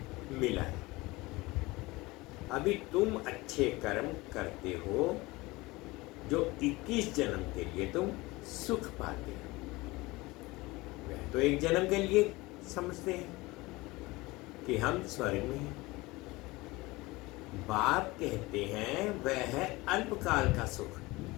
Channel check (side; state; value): right; quieter; 21.7 dB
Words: मिला है। अभी तुम अच्छे कर्म करते हो जो 21 जन्म के लिए तुम सुख पाते हो। वह तो एक जन्म के लिए समझते हैं कि हम स्वर्ग में हैं। बाप कहते हैं वह है अल्पकाल का सुख,